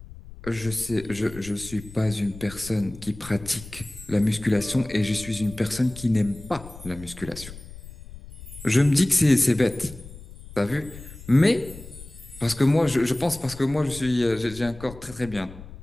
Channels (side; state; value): left; noise; rumble, 16 dB below the sound